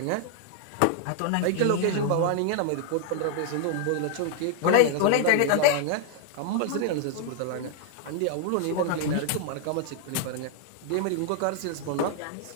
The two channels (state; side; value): different; both; correlation 0.00